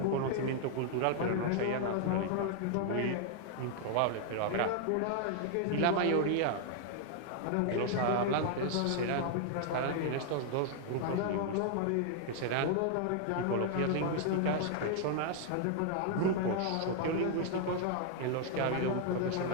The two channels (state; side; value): different; both; correlation 0.00